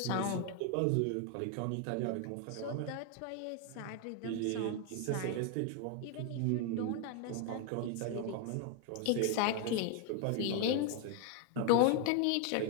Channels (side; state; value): both; different; correlation 0.01